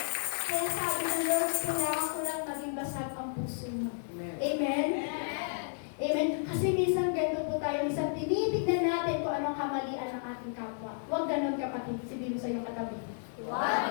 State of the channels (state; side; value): silent; right; digital silence